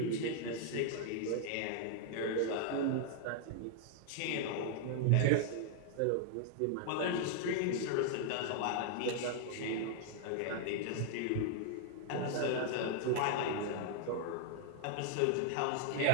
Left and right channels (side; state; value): both; different; correlation -0.01